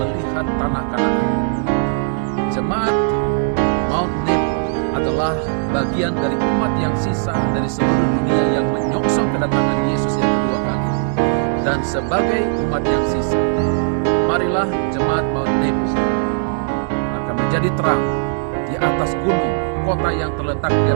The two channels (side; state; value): left; silent; 67 dB below the other